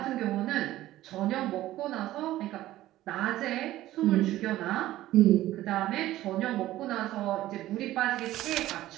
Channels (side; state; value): left; quieter; 15.1 dB